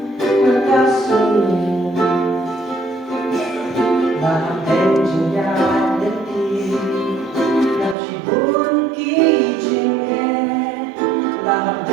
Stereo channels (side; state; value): left; drops out; at 8.0 s